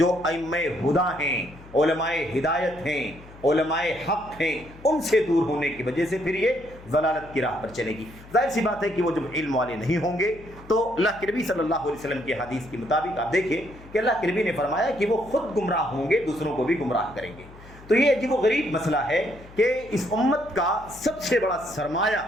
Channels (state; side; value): noise; left; hum, 20 dB below the sound